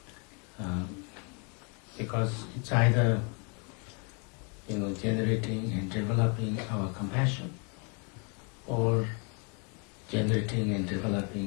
Because it's either generating and developing our compassion, or generating and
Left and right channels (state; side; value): quieter; right; 36.3 dB